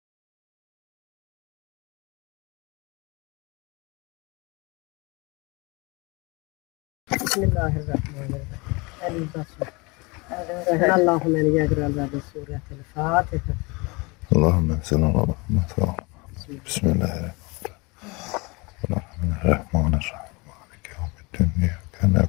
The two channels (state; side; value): quieter; right; 27.0 dB